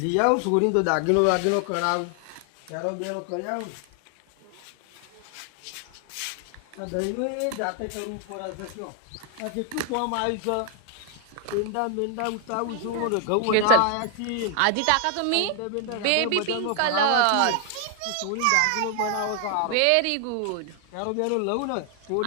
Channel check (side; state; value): both; different; correlation 0.00